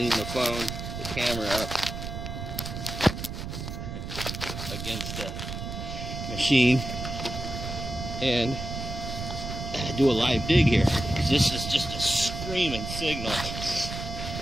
the camera up against the machine and do a live dig here. This is just a screaming signal.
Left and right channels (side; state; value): right; noise; rumble, 6 dB below the sound